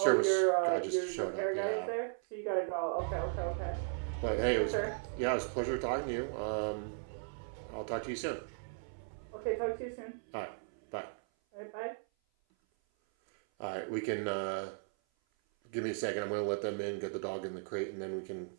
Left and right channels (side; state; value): left; silent; 53 dB below the other